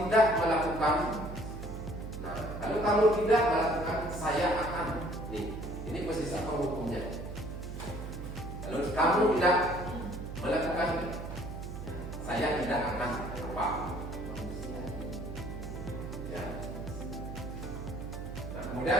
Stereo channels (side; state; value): right; noise; hum, 8 dB below the sound